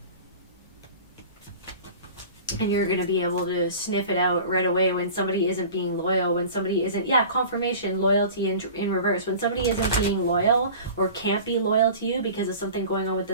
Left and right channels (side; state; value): both; inverted; correlation -0.39